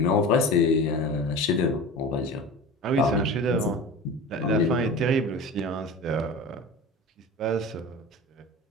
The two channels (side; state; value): both; normal; correlation 0.33